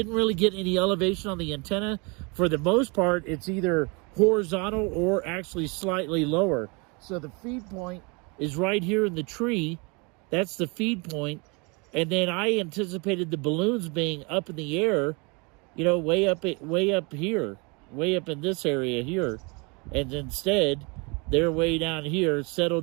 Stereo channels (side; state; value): left; quieter; 30.3 dB